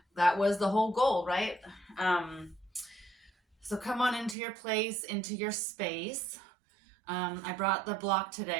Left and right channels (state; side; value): drops out; left; at 4.4 s